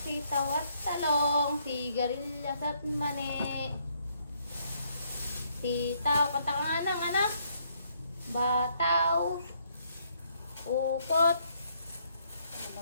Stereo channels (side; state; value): both; inverted; correlation -0.70